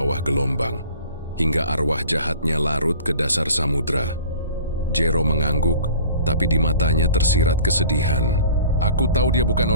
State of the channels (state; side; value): inverted; both; correlation -0.45